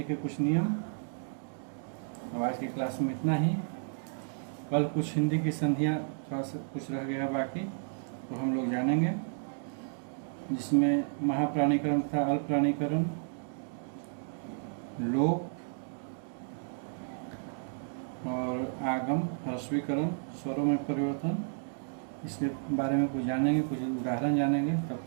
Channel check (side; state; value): left; silent; digital silence